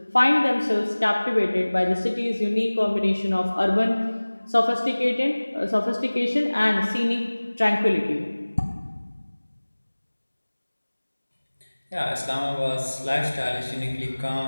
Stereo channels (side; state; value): both; inverted; correlation -1.00